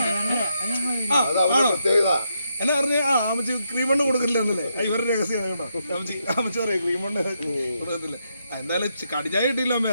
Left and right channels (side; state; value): both; inverted; correlation -0.80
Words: എന്നാ പറഞ്ഞ അമ്മച്ചി ക്രീമണ്ണ് കൊടുക്കില്ല എന്നല്ലേ ഇവരുടെ രഹസ്യം കേട്ടോ. അമ്മച്ചി പറയാം ക്രീമണ്ണ് കൊടുക്കത്തില്ല. എന്തായാലും കടിച്ചായ കിട്ടിയില്ല അമ്മ,